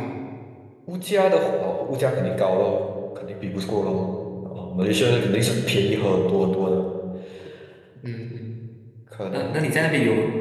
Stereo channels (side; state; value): both; identical; correlation 1.00